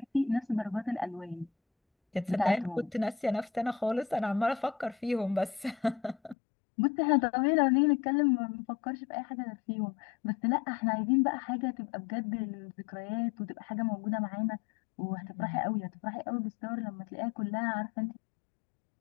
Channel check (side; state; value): right; drops out; at 6.4 s